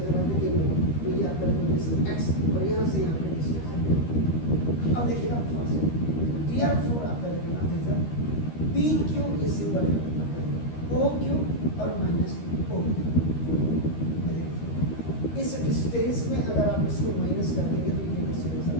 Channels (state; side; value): late; right; 13 ms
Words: आप देखेंगे तो ये आपका डिस्टेंस x और यहाँ से यहाँ की डिस्टेंस. अब देखिएगा फर्स्ट therefore आपका देखना जैसा PQ is equal to OQ और माइनस OQ. इस डिस्टेंस में अगर आप इसको माइनस कर देंगे तो ये डिस्टेंस आ